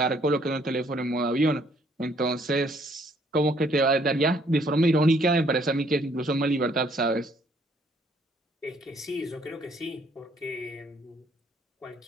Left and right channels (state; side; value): normal; both; correlation 0.65